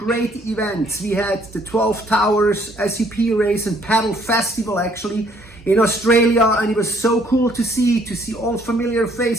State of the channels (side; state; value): both; normal; correlation 0.63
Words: events. We had the 12 Towers SCP race and paddle festival actually in Australia, and it was so cool to see all familiar